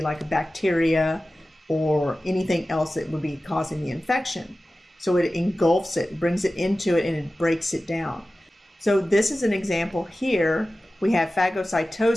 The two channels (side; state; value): both; normal; correlation 0.95